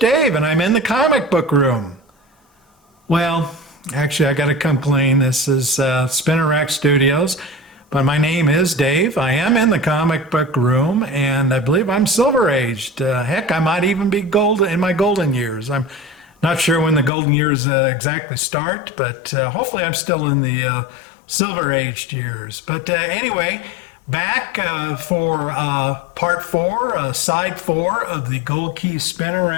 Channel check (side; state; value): right; drops out; at 17.1 s